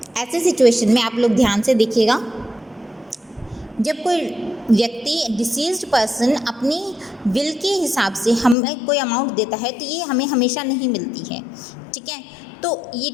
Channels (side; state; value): right; drops out; at 8.6 s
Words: ऐसी सिचुएशन में आप लोग ध्यान से देखिएगा, जब कोई व्यक्ति डिसीज्ड पर्सन अपनी विल के हिसाब से हमें कोई अमाउंट देता है तो ये हमें हमेशा नहीं मिलती है, ठीक है। तो